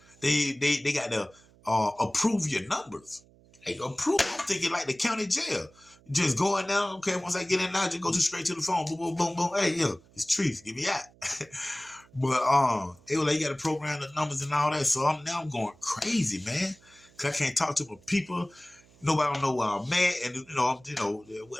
they got to approve your numbers. Hey, approve. I'm thinking like the county jail. Just going down, okay, once I get in now, just go straight to the phone. Boom, boom, boom, boom. Hey, yo, it's Trees. Get me out. But they were like, you got to program the numbers and all that. So I'm going crazy, man. Cause I can't talk to my people. Nobody don't know where I'm at, and I'm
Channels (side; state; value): right; noise; hum, 28 dB below the sound